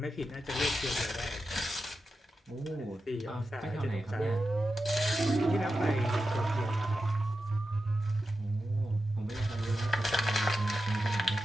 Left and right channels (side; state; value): both; normal; correlation 0.91